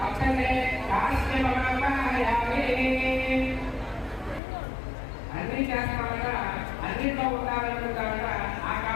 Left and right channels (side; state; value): right; drops out; at 4.4 s